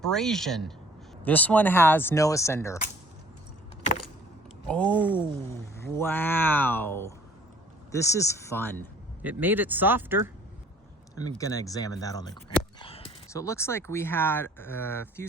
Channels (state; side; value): normal; both; correlation 0.54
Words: This one has no ascender. Oh, wow. This is fun. It made it softer. I'm gonna examine that on the ground. So it looks like we had a few